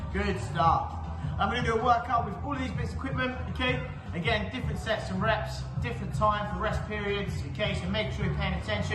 Good stuff. I'm gonna do a workout with all of these bits of equipment, okay? Again, different sets and reps, different time for rest periods, okay? So make sure you're paying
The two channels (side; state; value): both; identical; correlation 1.00